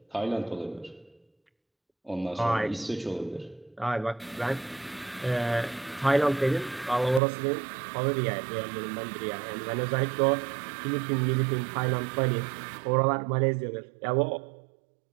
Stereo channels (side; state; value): left; drops out; at 7.2 s